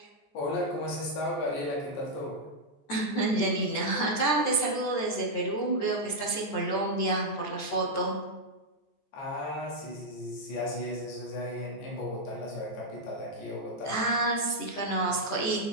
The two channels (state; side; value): late; right; 14 ms